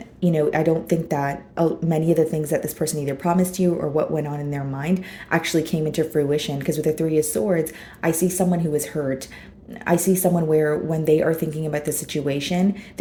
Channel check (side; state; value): both; identical; correlation 1.00